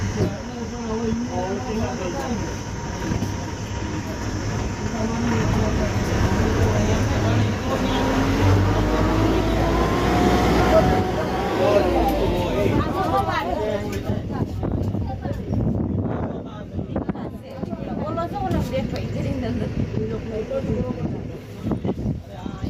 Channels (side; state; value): both; identical; correlation 1.00